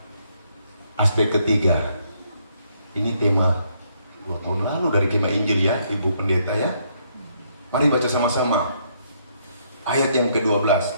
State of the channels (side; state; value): both; inverted; correlation -0.71